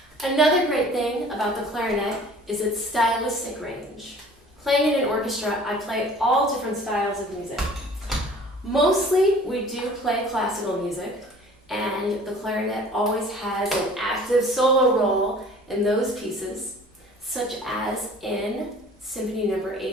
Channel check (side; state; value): both; normal; correlation 0.48